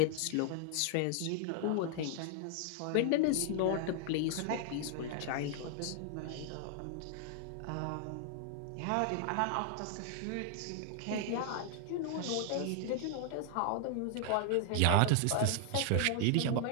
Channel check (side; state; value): both; different; correlation 0.00